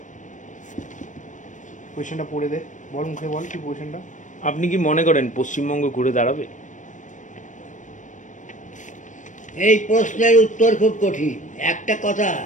কোয়েশ্চেনটা পড়ে দে, বল মুখে বল কি কোয়েশ্চেনটা। আপনি কি মনে করেন পশ্চিমবঙ্গ ঘুরে দাঁড়াবে? এই প্রশ্নের উত্তর খুব কঠিন। একটা কথা,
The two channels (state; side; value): late; right; 0.37 ms